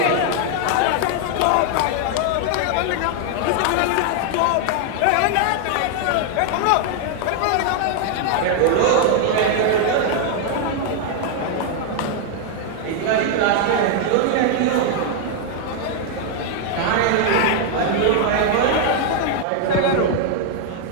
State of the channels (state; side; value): different; both; correlation 0.00